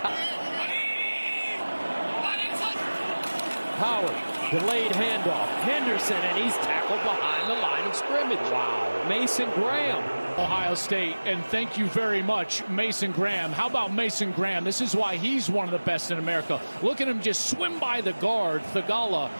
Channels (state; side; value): inverted; both; correlation -1.00